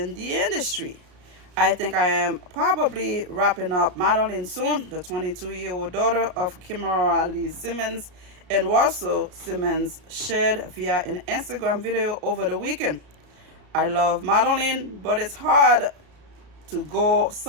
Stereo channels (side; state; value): left; late; 33 ms